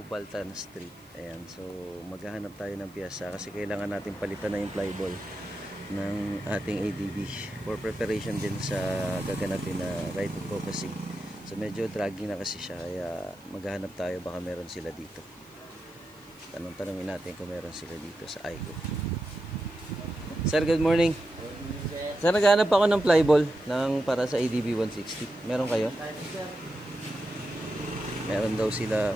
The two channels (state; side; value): noise; right; hiss, 28 dB below the sound